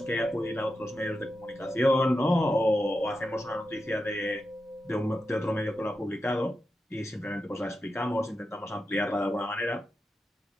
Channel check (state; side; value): normal; both; correlation 0.89